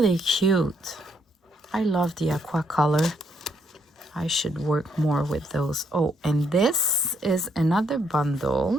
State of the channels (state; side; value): normal; both; correlation 0.72